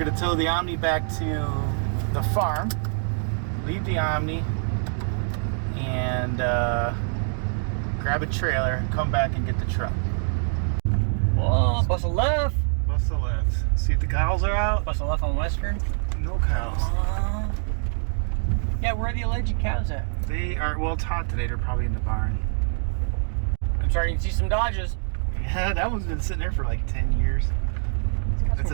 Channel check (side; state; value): left; silent; 61 dB below the other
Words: tow the Omni back to the farm, leave the Omni, and grab a trailer and come back and get the truck. Whoa, bust a left. Bust the left. See if the cows are out. Bust a left on Western. No cows. Yeah, where are the alleged cows at? They are, well, it's hot today. They're probably in the barn. I'm starting to see some Dodges. Yeah, that one's been sitting there for like 10 years. That's